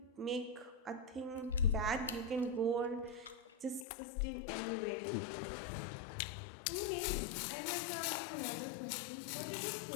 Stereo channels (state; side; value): drops out; right; at 3.9 s